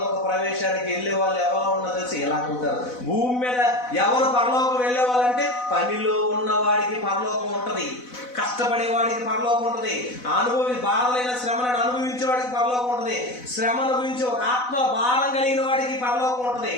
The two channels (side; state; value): right; late; 4.0 ms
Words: ప్రవేశానికి వెళ్ళే వాళ్ళు ఎవరో ఉన్నదో తెలిసి ఎలా ఉంటారు. భూమి మీద ఎవరు పరలోకం వెళ్ళే వాళ్ళంటే పనిలో ఉన్నవాడికి పరలోకం ఉంటుంది, కష్టపడేవాడికి పరలోకం ఉంటుంది, బాధలైన శ్రమలను అనుభవించేవాడికి పరలోకం ఉంటుంది, శ్రమ అనుభవించే ఒక ఆత్మ భారం కలిగిన వాడికి పరలోకం ఉంటుంది.